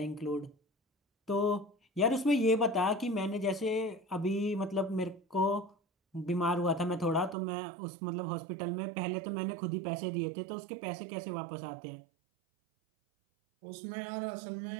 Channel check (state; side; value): drops out; left; at 7.4 s